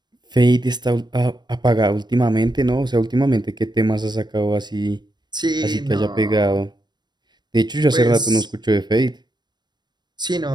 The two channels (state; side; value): late; left; 0.21 ms